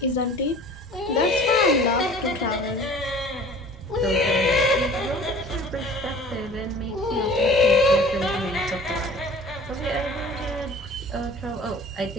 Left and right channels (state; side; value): noise; right; rumble, 21 dB below the sound